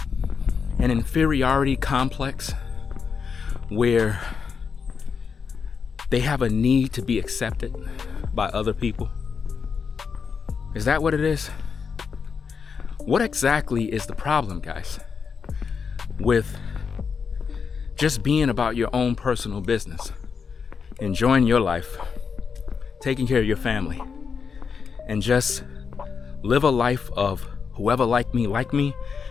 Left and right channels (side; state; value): right; quieter; 5.9 dB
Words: an inferiority complex where they have a need to be accepted by other people? Is that what it is? What exactly is the problem, guys, with just being about your own personal business, enjoying your life, taking care of your family, and just live a life of whoever like me,